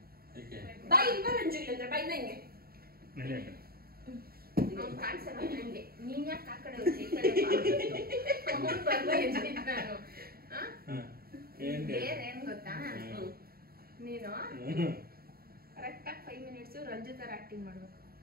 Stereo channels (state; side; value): late; left; 0.44 ms